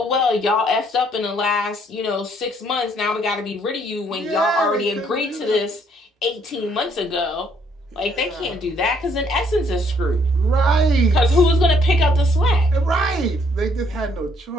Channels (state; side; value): normal; both; correlation 0.67